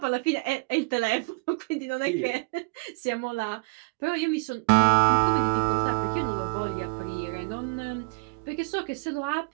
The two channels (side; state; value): left; quieter; 31.1 dB